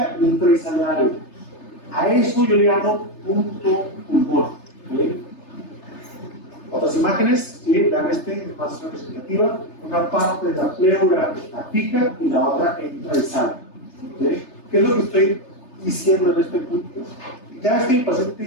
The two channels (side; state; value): right; late; 3.3 ms